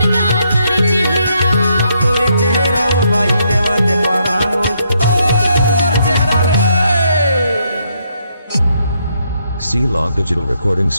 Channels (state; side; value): inverted; both; correlation -0.75